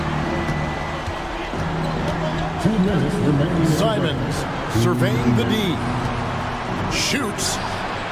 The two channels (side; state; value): both; identical; correlation 1.00